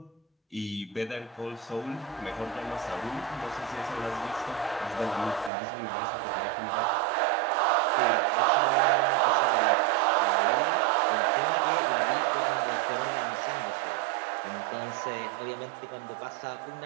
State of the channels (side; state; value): left; drops out; at 5.5 s